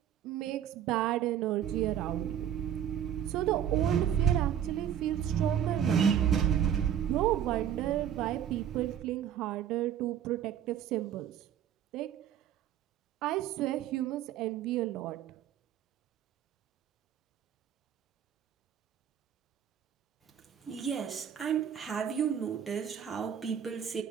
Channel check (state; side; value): quieter; left; 9.7 dB